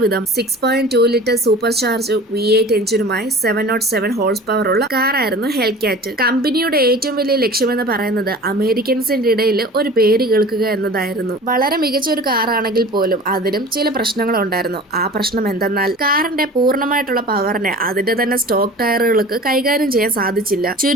വിധം 6.2 litre super charge V8 എഞ്ചിനുമായി 707 horse power ഉള്ള കാറായിരുന്നു ഹെൽക്യാറ്റ്. കമ്പനിയുടെ ഏറ്റവും വലിയ ലക്ഷ്യമെന്ന് പറയുന്നത് അമേരിക്കൻസിന്റെ ഇടയിൽ ഒരു പേര് കേൾക്കുക എന്നതായിരുന്നു. വളരെ മികച്ച ഒരു കാറാണെങ്കിൽ പോലും അതിനും ചില പ്രശ്നങ്ങളുണ്ടായിരുന്നു. ആ പ്രശ്നം എന്തെന്നാൽ കാറിന്റെ പൂർണ്ണമായിട്ടുള്ള പവറിനെ അതിന്റെ തന്നെ സ്റ്റോക്ക് ടയറുകൾക്ക് കൈകാര്യം ചെയ്യാൻ സാധിച്ചില്ല.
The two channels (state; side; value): normal; both; correlation 0.40